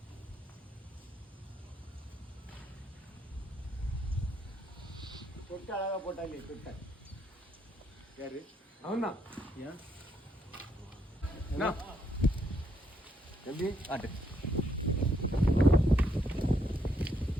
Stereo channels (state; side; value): normal; both; correlation 0.74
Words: தொட்டு அழகா போட்டாலே தொட்ட யாரு அவன்தான். என்ன? எப்படி ஆட்டு